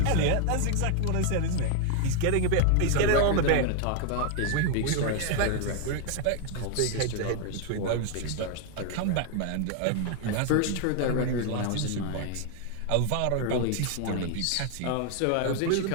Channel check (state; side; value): different; both; correlation 0.00